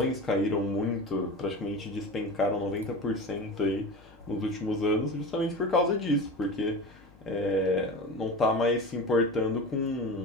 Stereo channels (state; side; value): noise; left; hum, 26 dB below the sound